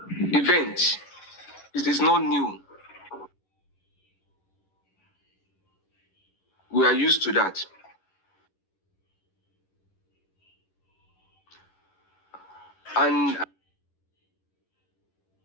events, it is not new. We we are used to that. And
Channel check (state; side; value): late; right; 11 ms